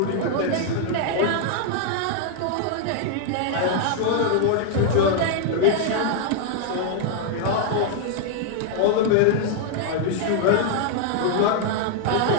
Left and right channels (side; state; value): both; different; correlation 0.00